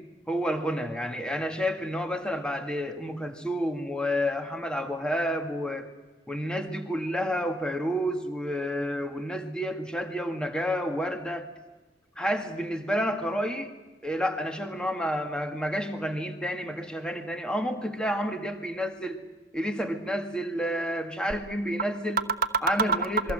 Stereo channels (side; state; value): both; normal; correlation 0.66